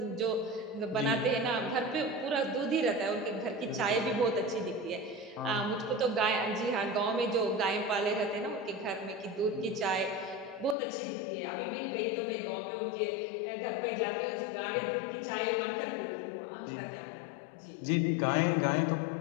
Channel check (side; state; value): right; drops out; at 10.8 s